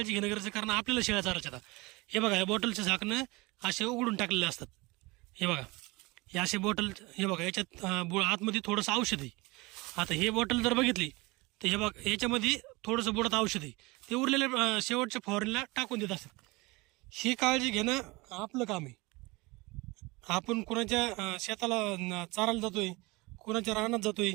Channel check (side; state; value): left; quieter; 23.8 dB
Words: घेणं गरजेचं, कारण आपल्याला शेळ्या चारायच्या. आता हे बघा, या बॉटलचे झाकणं असे उघडून टाकलेले असतात. हे बघा, हे असे बॉटल, हे बघा याच्यात आतमध्ये थोडंसं औषध आहे. आता हे बॉटल जर बघितली तर हे बघा, याच्यामध्ये थोडंसं बुडात औषध आहे. ते उरलेल्या शेवटच्या फवारणीला टाकून देत असतात. ही काळजी घेणं आपलं काम आहे. आपण कुणाच्या शेताला चारायला जातोय, कुणाच्या रानात जातोय,